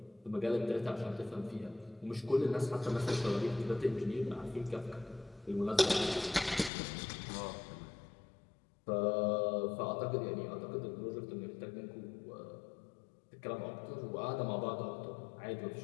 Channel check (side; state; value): right; drops out; at 6.7 s